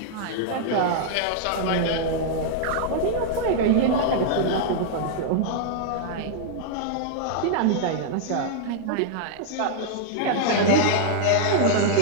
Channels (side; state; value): both; different; correlation -0.01